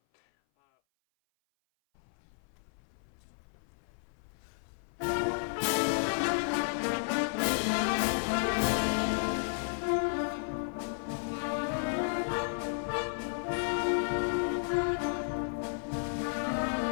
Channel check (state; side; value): silent; right; 56 dB below the other